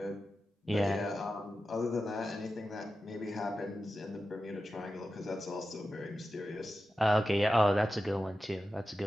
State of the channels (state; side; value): normal; both; correlation 0.92